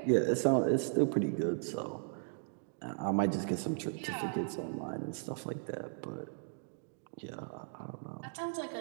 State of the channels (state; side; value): silent; left; digital silence